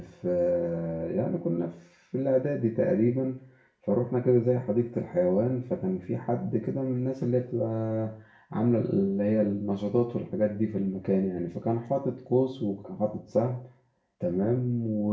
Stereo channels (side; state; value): both; identical; correlation 1.00